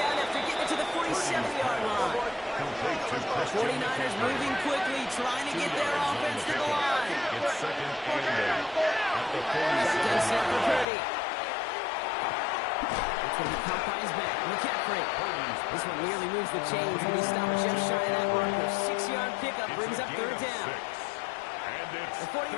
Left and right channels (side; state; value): right; drops out; at 10.9 s